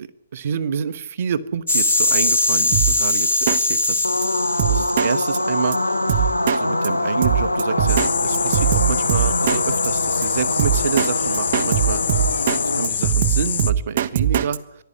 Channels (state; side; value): inverted; both; correlation -0.60